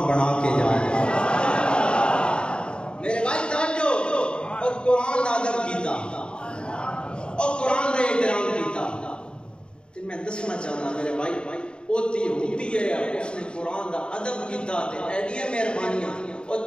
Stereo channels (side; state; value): right; late; 0.052 ms